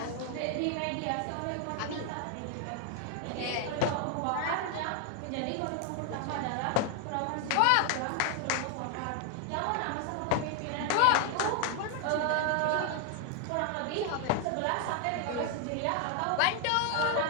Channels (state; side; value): different; both; correlation 0.00